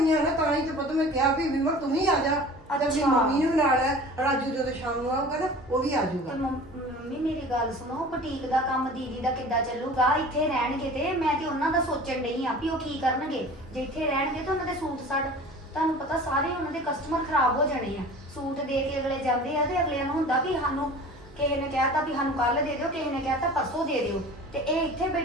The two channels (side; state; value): both; normal; correlation 0.41